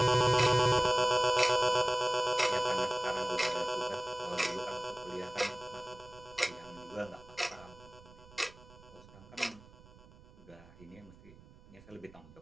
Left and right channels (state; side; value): noise; right; rumble, 22 dB below the sound